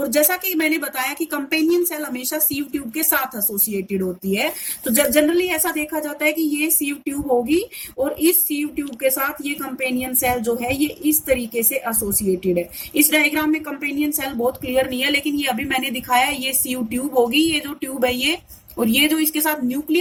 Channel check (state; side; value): identical; both; correlation 1.00